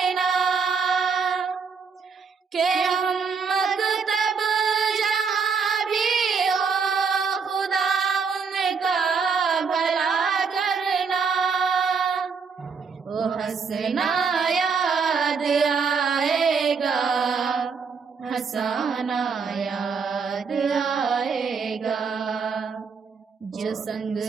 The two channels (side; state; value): left; quieter; 5.6 dB